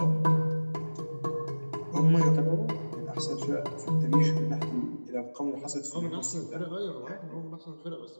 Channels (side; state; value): both; inverted; correlation -1.00